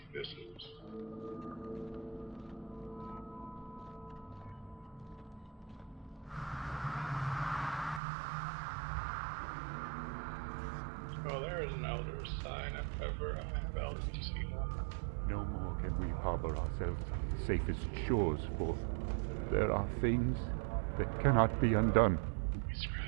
this is. Oh, there is an elder sign if ever I have elders to see one. No more can we harbor ourselves on the safest shores, for there are things that cannot be undone. We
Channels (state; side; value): drops out; left; at 8.0 s